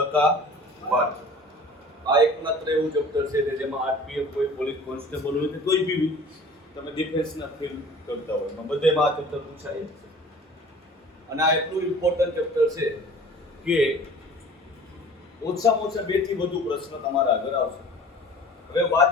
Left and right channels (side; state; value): both; normal; correlation 0.45